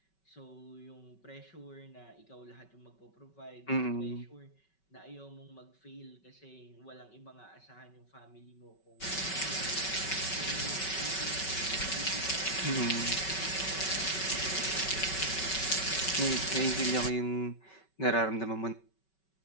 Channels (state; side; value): late; right; 5.3 ms